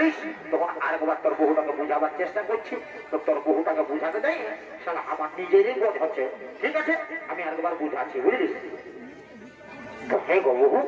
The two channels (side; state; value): both; identical; correlation 1.00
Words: তখন আরেকবার তোর বহুটাকে বুঝাবার চেষ্টা করছি। তো তোর বহুটাকে বুঝাতে যাই শালা আমার নিজেরই বোধ হচ্ছে। ঠিক আছে, আমি আরেকবার বুঝাচ্ছি, বুঝলিস? তো হে গো বহু,